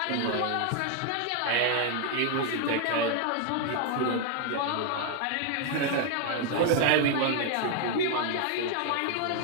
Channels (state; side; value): different; both; correlation 0.01